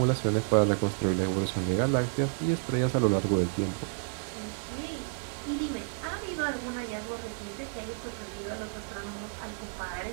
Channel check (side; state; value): left; silent; digital silence